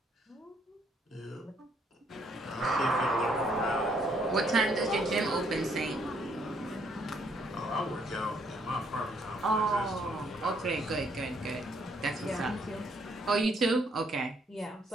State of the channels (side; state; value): both; normal; correlation 0.69